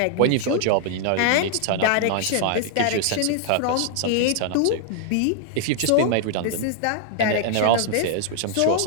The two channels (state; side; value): different; both; correlation 0.00